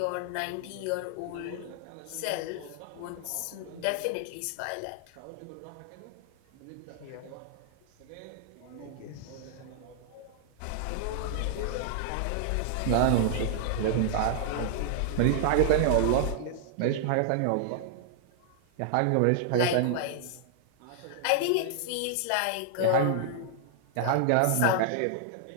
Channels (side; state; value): both; different; correlation -0.01